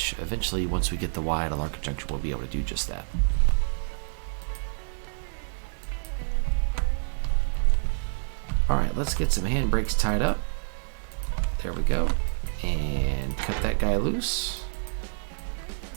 eventually, once we get the Y at a Larkin junction, we'll be able to do just that. Alright, let's get some handbrakes tied up. There we go. And cut that guy loose.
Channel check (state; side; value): silent; left; 60 dB below the other